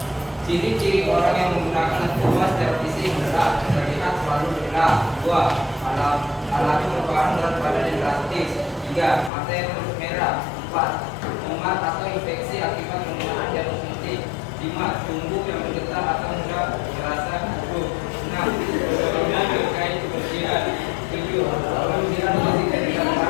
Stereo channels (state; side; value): drops out; right; at 9.3 s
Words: Ciri-ciri orang yang menggunakan narkoba secara fisik adalah terlihat selalu bergerak. 2. Alat merupakan berat badan yang drastis. 3. Mata yang terus merah. 4. Mumat atau infeksi akibat penggunaan jarum suntik. 5. Tubuh yang bergetar atau mudah merasa gugup. 6. Sebelumnya terkait kebersihan. 7. Kebersihan fisik dari